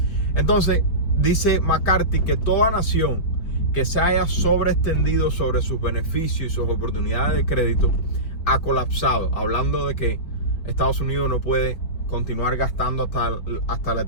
Entonces, dice McCarthy que toda nación que se haya sobreextendido sobre sus beneficios y sus oportunidades de crédito ha colapsado, hablando de que Estados Unidos no puede continuar gastando hasta la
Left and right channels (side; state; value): right; late; 4.8 ms